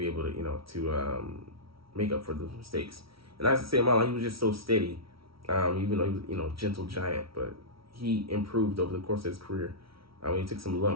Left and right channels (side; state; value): left; late; 0.75 ms